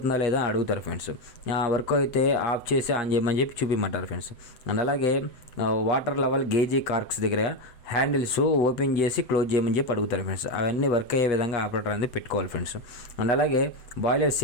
లేదా అడుగుతారు ఫ్రెండ్స్. వర్క్ అయితే ఆఫ్ చేసి ఆన్ చేయమని చెప్పి చూపించమంటారు ఫ్రెండ్స్. అండ్ అలాగే వాటర్ లెవెల్ గేజీ కార్క్స్ దగ్గర హ్యాండిల్స్ ఓపెన్ చేసి క్లోజ్ చేయమని చెప్పి అడుగుతారు ఫ్రెండ్స్. అవన్నీ వర్క్ అయ్యే విధంగా ఆపరేటర్ అనేది పెట్టుకోవాలి ఫ్రెండ్స్. అండ్ అలాగే బాయిలర్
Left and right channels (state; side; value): late; right; 8.0 ms